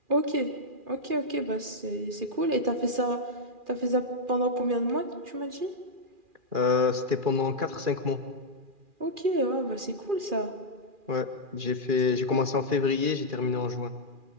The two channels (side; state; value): left; late; 2.4 ms